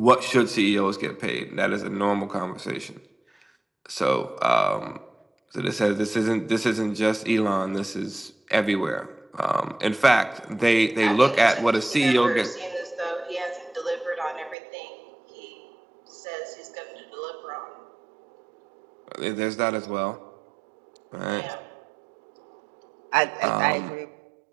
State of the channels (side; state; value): left; drops out; at 14.6 s